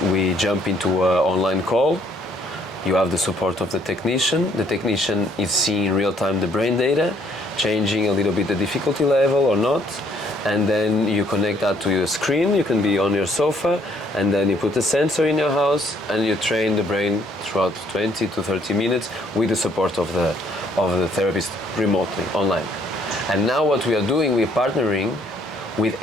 We jump into an online call. You have the support of the technician. The technician is seeing in real time the brain data, changing a little bit the difficulty level or not, and then you connect that to your screen. You can be on your sofa, and then you put a sensor in your house, and you train the brain throughout 20 to 30 minutes with the support of the therapist remotely, online. And now what we are doing, we're partnering with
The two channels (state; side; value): normal; both; correlation 0.65